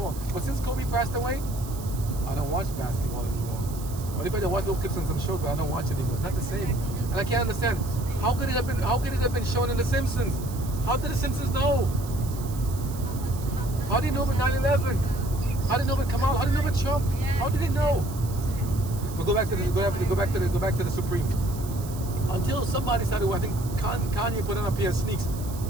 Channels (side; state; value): right; noise; hiss, 16 dB below the sound